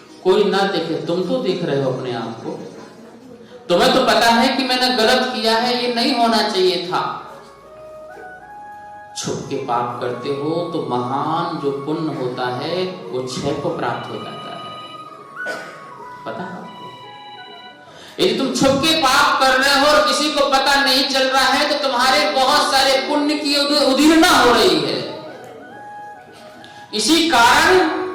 कोई ना देखे, तुम तो देख रहे हो अपने आप को। तुम्हें तो पता है कि मैंने गलत किया है, ये नहीं होना चाहिए था। छुप के पाप करते हो तो महान जो पुण्य होता है वो क्षय को प्राप्त हो जाता है, पता है आपको? यदि तुम छुप के पाप कर रहे हो और किसी को पता नहीं चल रहा है तो तुम्हारे बहुत सारे पुण्य की उदीर्णा हो रही है। इसी कारण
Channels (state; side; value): identical; both; correlation 1.00